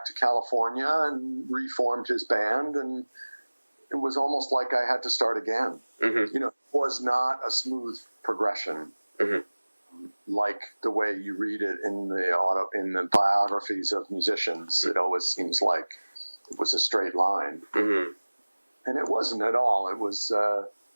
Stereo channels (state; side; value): inverted; both; correlation -1.00